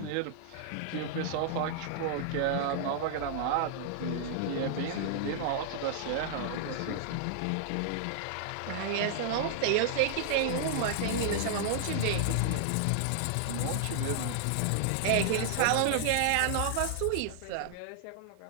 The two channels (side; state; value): both; different; correlation -0.01